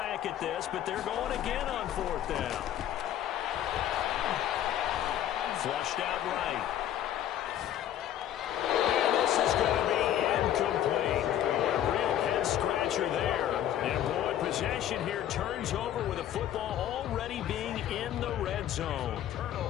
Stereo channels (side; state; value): right; quieter; 11.3 dB